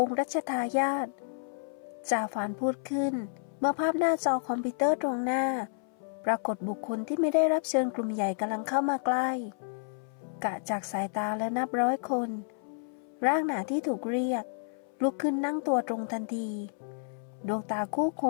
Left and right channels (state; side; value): silent; right; 57 dB below the other